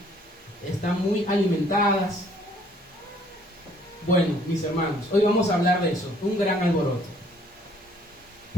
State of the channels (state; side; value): normal; both; correlation 0.60